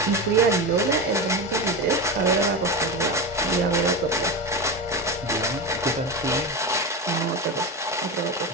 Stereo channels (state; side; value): normal; both; correlation 0.20